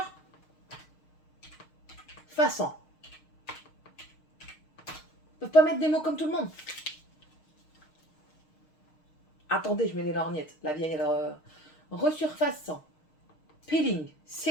Ils peuvent pas mettre des mots comme tout le monde. Attendez, je mets les lorgnettes. La vieille, alors... resurfaçant. Peeling,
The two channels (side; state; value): right; late; 6.5 ms